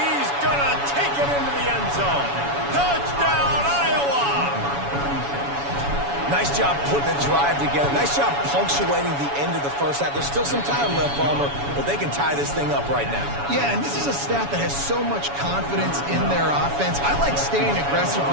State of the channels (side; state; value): left; late; 7.1 ms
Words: going to take it into the end zone. Touchdown, Iowa! Nice job putting the drive together. Nice job punctuating the end of the first half. There's still some time left, Palmer, but they can tie this thing up right now. Yeah, and this is a staff that has so much confidence in their offense. I like staying aggressive